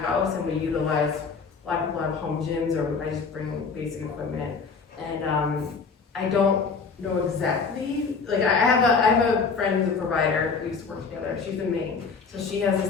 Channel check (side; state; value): right; quieter; 5.1 dB